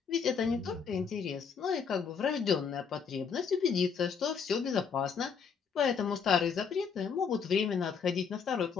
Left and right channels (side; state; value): right; quieter; 6.3 dB